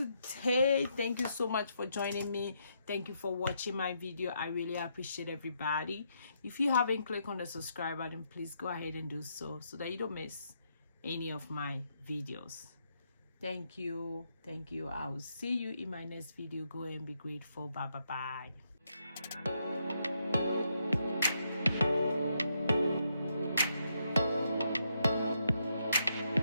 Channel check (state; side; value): inverted; both; correlation -0.78